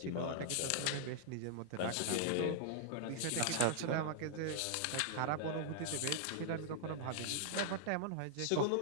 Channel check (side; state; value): both; different; correlation -0.01